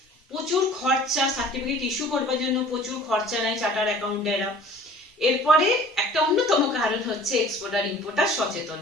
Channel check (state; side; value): normal; both; correlation 0.48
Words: প্রচুর খরচা, সার্টিফিকেট ইস্যু করবার জন্য প্রচুর খরচা নেয় চার্টার অ্যাকাউন্টেরা, এরপরে একটা অন্যতম কারণ হচ্ছে এক্সপোর্টার ইম্পোর্টার সচেতন